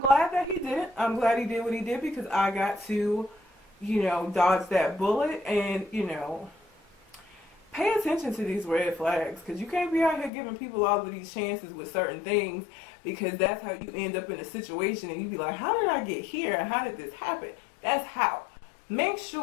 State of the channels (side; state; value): right; drops out; at 10.3 s